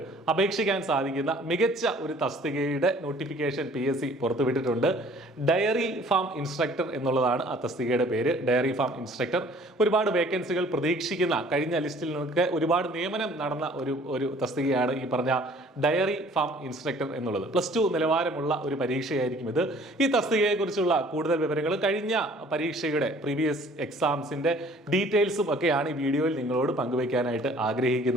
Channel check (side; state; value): both; normal; correlation 0.54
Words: അപേക്ഷിക്കാൻ സാധിക്കുന്ന മികച്ച ഒരു തസ്തികയുടെ നോട്ടിഫിക്കേഷൻ PSC പുറത്തുവിട്ടിട്ടുണ്ട്. ഡയറി ഫാം ഇൻസ്ട്രക്ടർ എന്നുള്ളതാണ് ആ തസ്തികയുടെ പേര്. Dairy farm instructor. ഒരുപാട് വേക്കൻസികൾ പ്രതീക്ഷിക്കുന്ന കഴിഞ്ഞ ലിസ്റ്റിൽ നിന്നൊക്കെ ഒരുപാട് നിയമനം നടന്ന ഒരു തസ്തികയാണ് ഈ പറഞ്ഞ ഡയറി ഫാം ഇൻസ്ട്രക്ടർ എന്നുള്ളത്. +2 നിലവാരമുള്ള ഒരു പരീക്ഷയായിരിക്കും ഇത്. ഈ തസ്തികയെക്കുറിച്ചുള്ള കൂടുതൽ വിവരങ്ങൾ കഴിഞ്ഞ പരീക്ഷയുടെ പ്രീവിയസ് എക്സാംസിന്റെ ഡീറ്റെയിൽസും ഒക്കെയാണ് ഈ വീഡിയോയിൽ നിങ്ങളോട് പങ്കുവയ്ക്കാനായിട്ട്